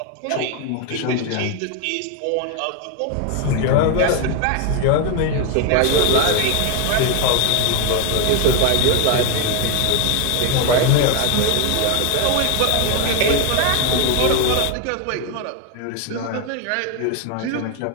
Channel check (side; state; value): both; different; correlation 0.01